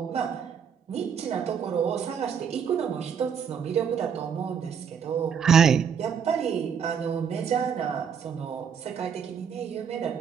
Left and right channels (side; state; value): left; quieter; 7.2 dB